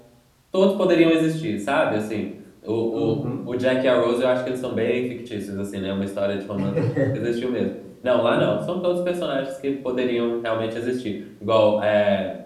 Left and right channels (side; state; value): both; identical; correlation 1.00